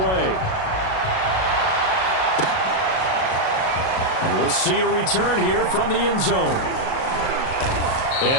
And we'll see a return here from the end zone.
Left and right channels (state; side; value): late; right; 37 ms